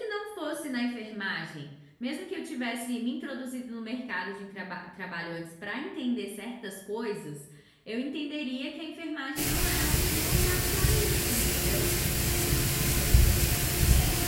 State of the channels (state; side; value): identical; both; correlation 1.00